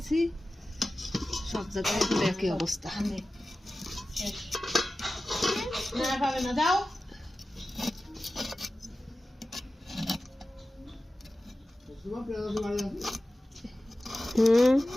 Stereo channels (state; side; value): normal; both; correlation 0.95